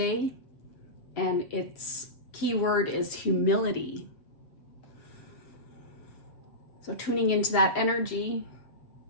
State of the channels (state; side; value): late; right; 7.7 ms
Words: and its keyword is humility. So tuning into that energy,